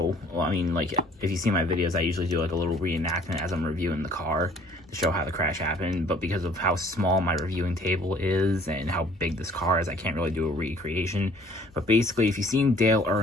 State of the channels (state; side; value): normal; both; correlation 0.56